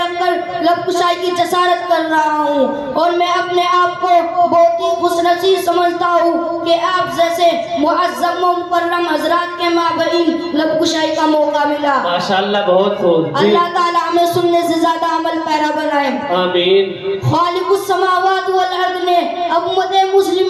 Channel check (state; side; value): identical; both; correlation 1.00